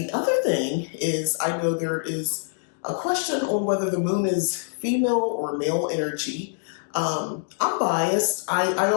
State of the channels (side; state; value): right; silent; digital silence